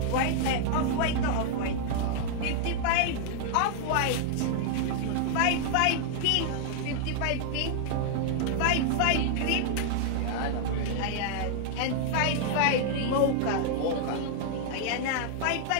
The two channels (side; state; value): both; different; correlation -0.01